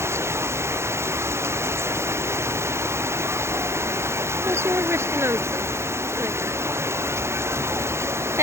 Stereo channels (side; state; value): left; late; 0.13 ms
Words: প্রচুর বৃষ্টি নামছে,